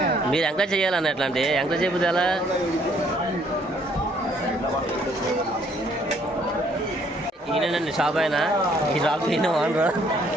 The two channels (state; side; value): normal; both; correlation 0.64